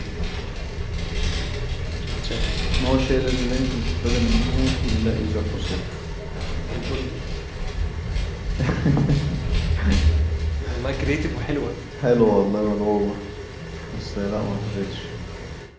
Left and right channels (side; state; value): both; identical; correlation 1.00